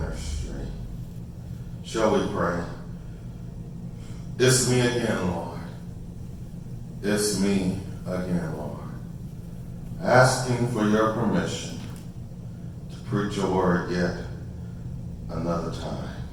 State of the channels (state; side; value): identical; both; correlation 1.00